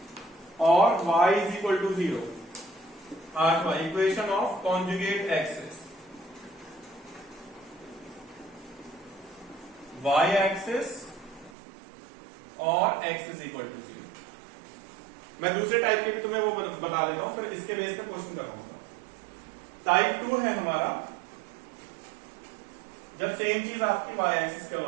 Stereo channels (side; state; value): left; drops out; at 11.6 s